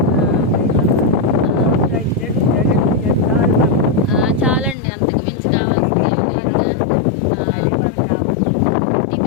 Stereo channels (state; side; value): drops out; right; at 4.8 s